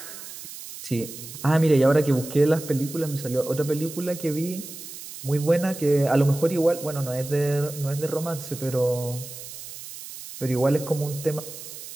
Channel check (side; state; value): right; noise; hiss, 12 dB below the sound